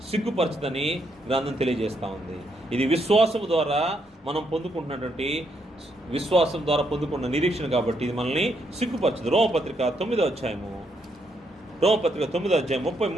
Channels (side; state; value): both; normal; correlation 0.76